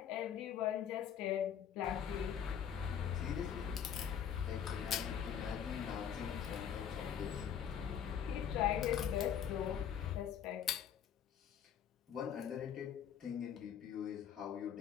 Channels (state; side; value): quieter; right; 8.7 dB